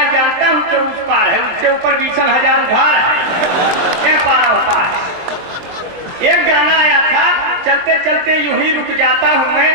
जानता हूँ कि उस पार है, उसके ऊपर 20,000 उधार है, क्या पार होता है। एक गाना आया था, चलते चलते यूं ही रुक जाता हूँ मैं,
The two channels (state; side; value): late; left; 23 ms